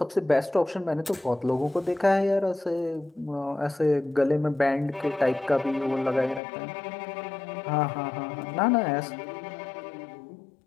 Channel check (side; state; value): right; drops out; at 6.4 s